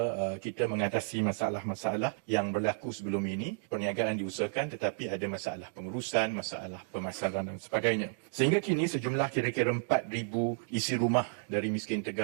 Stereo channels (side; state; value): left; silent; digital silence